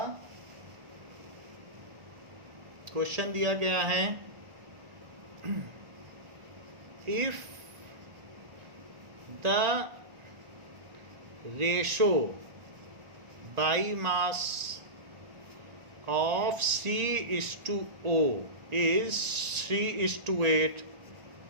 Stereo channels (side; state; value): left; late; 1.8 ms